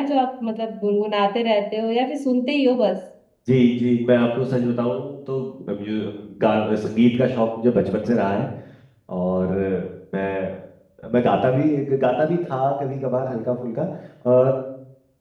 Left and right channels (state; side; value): identical; both; correlation 1.00